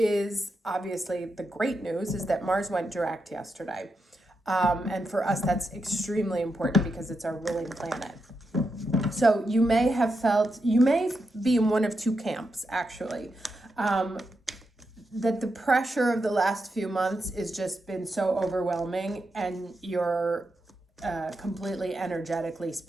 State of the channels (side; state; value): both; normal; correlation 0.85